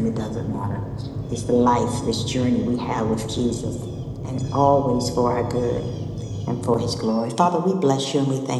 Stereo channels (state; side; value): identical; both; correlation 1.00